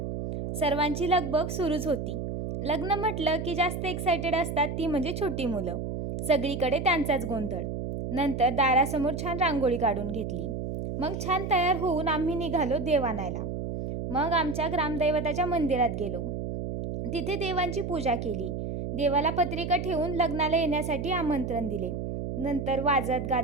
सर्वांची लगबग सुरूच होती. लग्न म्हटलं की जास्त एक्सायटेड असतात ती म्हणजे छोटी मुलं. सगळीकडे त्यांचाच गोंधळ. नंतर दारासमोर छान रांगोळी काढून घेतली. मग छान तयार होऊन आम्ही निघालो देव आणायला. मग आमच्या ग्रामदैवताच्या मंदिरात गेलो. तिथे देवांची पूजा केली. देवाला पत्रिका ठेवून लग्नाला येण्यासाठी आमंत्रण दिले. नंतर वाजत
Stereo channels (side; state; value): right; noise; hum, 4 dB below the sound